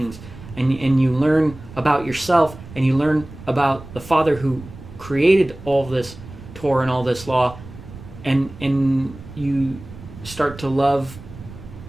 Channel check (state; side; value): noise; right; rumble, 16 dB below the sound